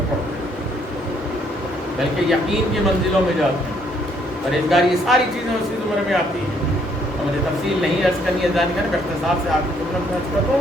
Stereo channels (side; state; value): both; normal; correlation 0.68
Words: पड़ते हैं, बल्कि यकीन की मंजिलों में जाते हैं। परहेजगारी, ये सारी चीज़ें उसी जुमरे में आती हैं। और मुझे तफसील नहीं अर्ज करनी है, जानी है, इख्तिसार से आपकी जुमला में अर्ज कर दूँ।